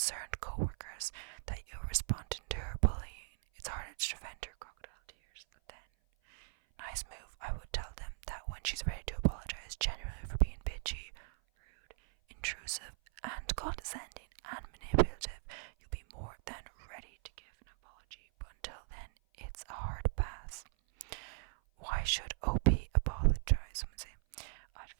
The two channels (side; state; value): left; silent; 52 dB below the other